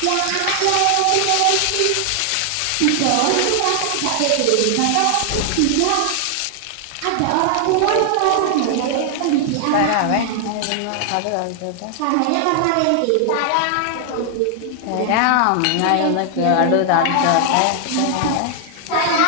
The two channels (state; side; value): different; both; correlation 0.00